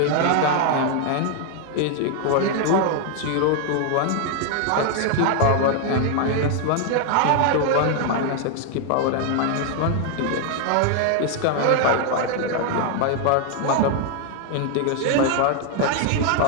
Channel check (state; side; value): different; both; correlation 0.00